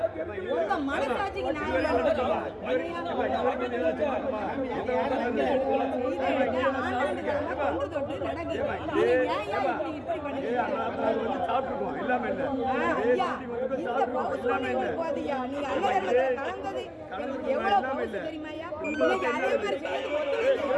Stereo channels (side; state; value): both; identical; correlation 1.00